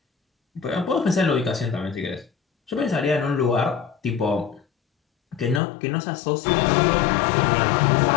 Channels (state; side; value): drops out; right; at 5.6 s